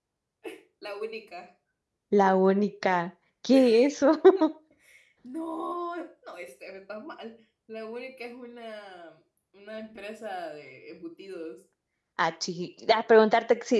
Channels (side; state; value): both; identical; correlation 1.00